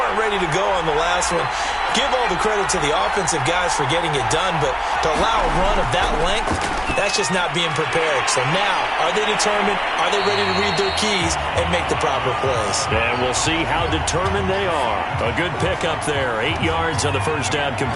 ready to go on the last one. Give all the credit to the offensive guys for getting it done, but to allow a run of that length, that's just not being prepared. So now, are they determined? Are they ready to read their keys and make the proper plays? And we'll see how determined they are. A good pickup there. 8 yards on the first down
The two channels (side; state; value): both; identical; correlation 1.00